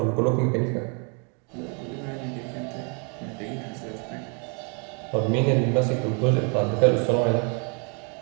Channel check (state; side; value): quieter; left; 36.5 dB